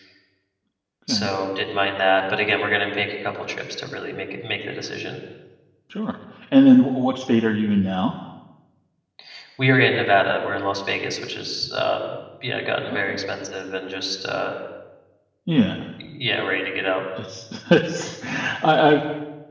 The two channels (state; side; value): identical; both; correlation 1.00